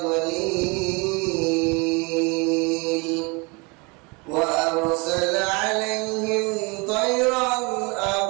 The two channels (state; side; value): quieter; left; 29.1 dB